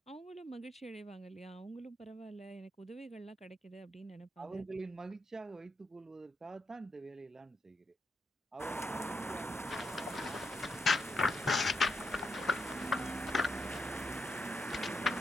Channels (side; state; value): both; normal; correlation 0.82